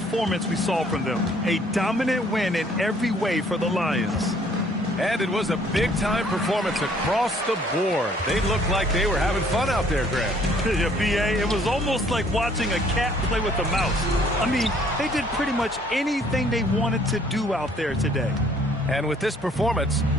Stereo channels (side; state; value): both; normal; correlation 0.61